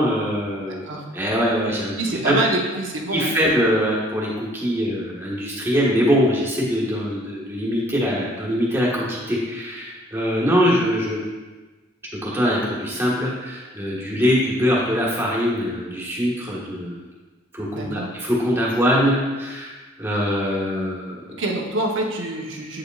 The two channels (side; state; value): both; normal; correlation 0.59